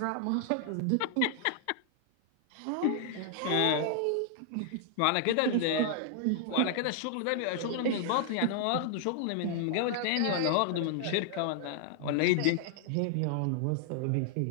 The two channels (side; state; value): both; different; correlation 0.00